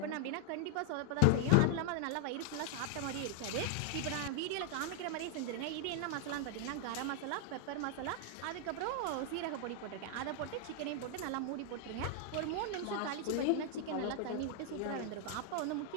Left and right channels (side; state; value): both; different; correlation 0.00